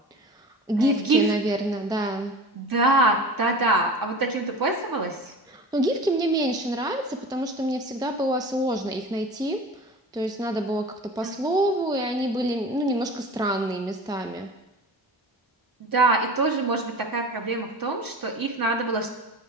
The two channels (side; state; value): both; normal; correlation 0.36